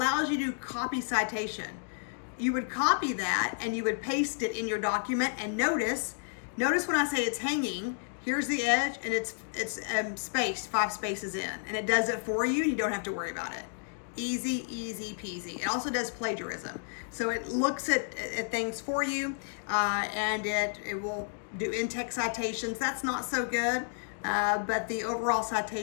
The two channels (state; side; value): silent; right; digital silence